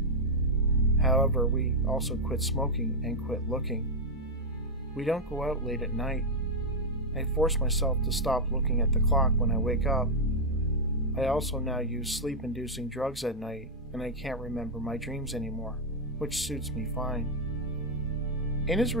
However, we also quit smoking and quit looking. We don't go out late at night. I force myself to stop looking at the clock when I wake up. I also now use sleep-inducing drugs at night, and I can't remember my dreams anymore, which suits me fine. In his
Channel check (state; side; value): normal; both; correlation -0.01